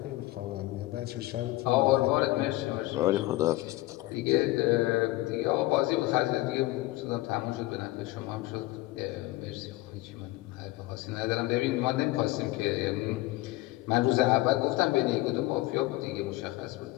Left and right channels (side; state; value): right; quieter; 18.5 dB